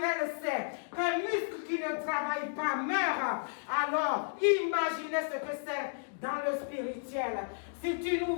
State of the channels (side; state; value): right; silent; digital silence